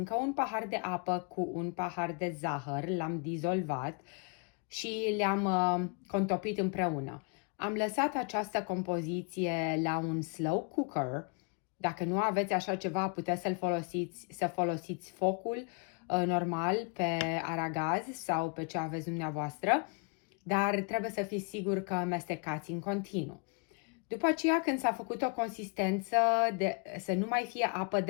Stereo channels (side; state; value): right; quieter; 35.1 dB